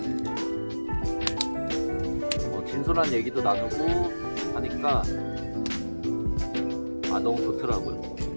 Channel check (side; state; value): both; inverted; correlation -1.00